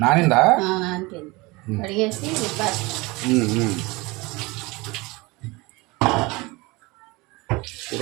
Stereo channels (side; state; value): left; quieter; 23.8 dB